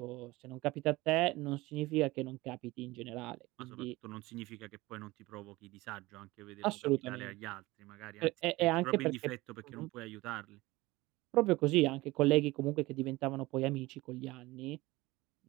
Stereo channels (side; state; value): left; quieter; 20.2 dB